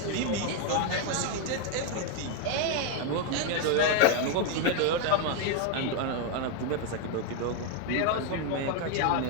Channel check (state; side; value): different; both; correlation 0.00